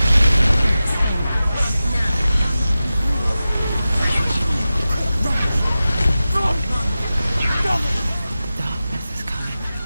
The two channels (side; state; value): both; inverted; correlation -0.94